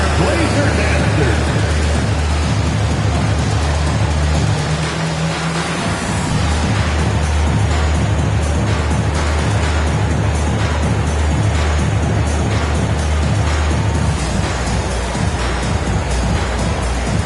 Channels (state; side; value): identical; both; correlation 1.00